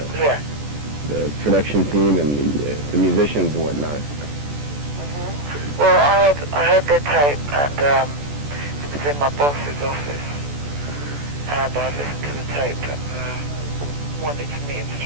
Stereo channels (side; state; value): left; late; 14 ms